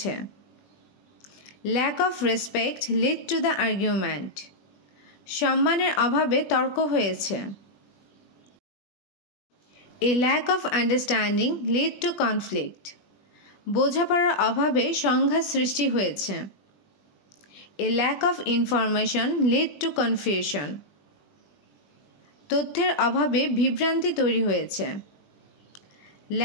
Lack of respect led to the argument. সম্মানের অভাবে তর্ক হয়েছে। A lack of understanding led to conflict. বোঝাপড়ার অভাবে সংঘাত সৃষ্টি হয়েছে। A lack of information led to confusion. তথ্যের অভাবে বিভ্রান্তি তৈরি হয়েছে।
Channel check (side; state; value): right; late; 20 ms